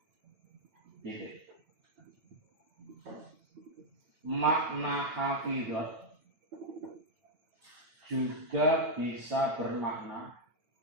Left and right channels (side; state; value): left; late; 9.0 ms